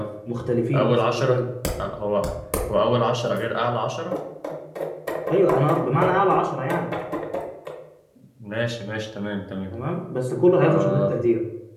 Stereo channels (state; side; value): identical; both; correlation 1.00